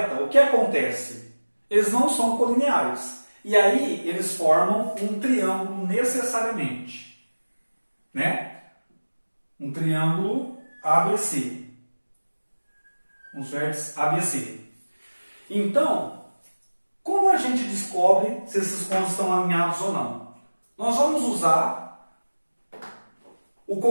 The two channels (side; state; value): both; inverted; correlation -1.00